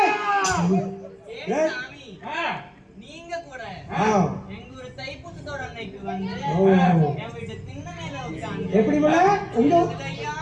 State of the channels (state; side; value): identical; both; correlation 1.00